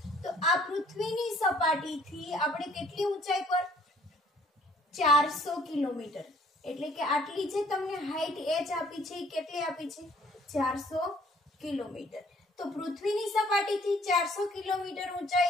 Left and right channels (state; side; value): normal; both; correlation 0.59